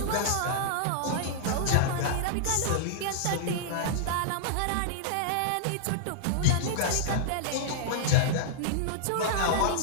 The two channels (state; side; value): different; both; correlation -0.01